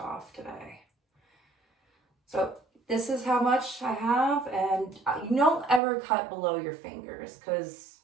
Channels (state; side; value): drops out; left; at 5.8 s